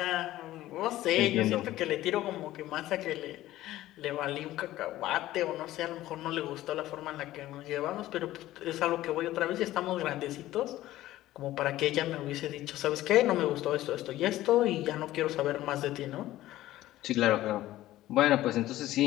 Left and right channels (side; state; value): right; quieter; 15.2 dB